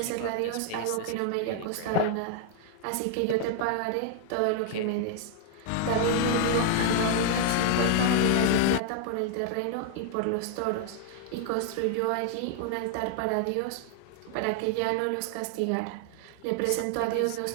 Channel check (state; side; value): different; both; correlation 0.00